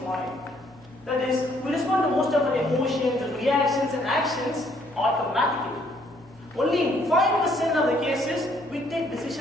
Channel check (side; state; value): right; noise; hum, 27 dB below the sound